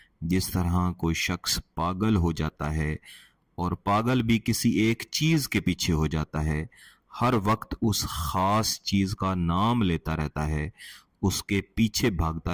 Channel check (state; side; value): identical; both; correlation 1.00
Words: جس طرح کوئی شخص پاگل ہو جاتا ہے اور پاگل بھی کسی ایک چیز کے پیچھے ہو جاتا ہے، ہر وقت اس خاص چیز کا نام لیتا رہتا ہے، اس کے پیچھے